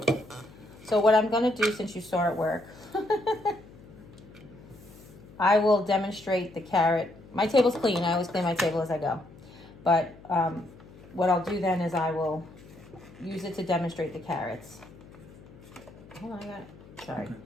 So what I'm going to do, since you saw it work, I will demonstrate the carrot. My table's clean. I always clean my table as I go. But what I'll do then is I will use it to demonstrate the carrots. Hold on, I got it. Sorry. Okay,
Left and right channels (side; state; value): left; noise; hum, 21 dB below the sound